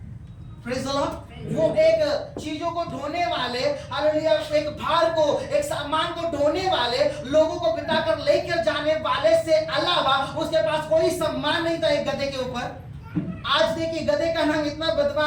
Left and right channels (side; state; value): both; identical; correlation 1.00